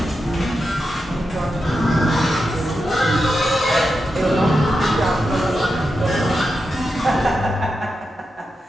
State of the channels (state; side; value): normal; both; correlation 0.88